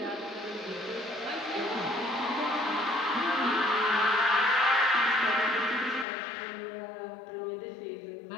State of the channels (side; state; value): right; drops out; at 6.1 s